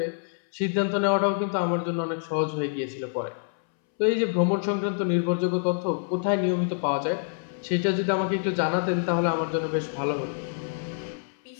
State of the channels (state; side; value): silent; right; 60 dB below the other